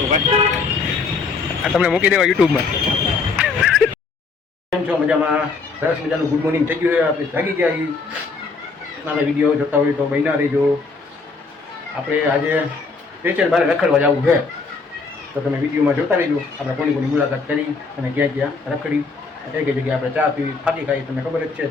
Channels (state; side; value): quieter; right; 4.4 dB